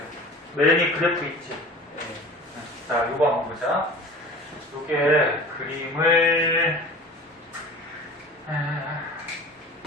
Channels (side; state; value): both; normal; correlation 0.39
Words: 맨이 그래프 있지? 자, 요거 한번 보자. 요게 그림을,